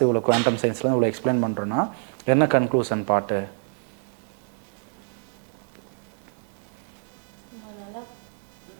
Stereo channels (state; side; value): silent; left; 61 dB below the other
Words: இவ்வளோ குவாண்டம் சயின்ஸில் இவ்வளோ எக்ஸ்பிளைன் பண்ணுறோன்னா என்ன கன்க்ளூஷன் பாட்டு? நம்ம நல்லா